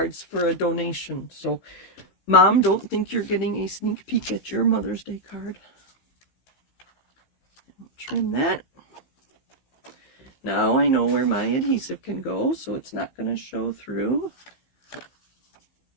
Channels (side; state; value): right; late; 15 ms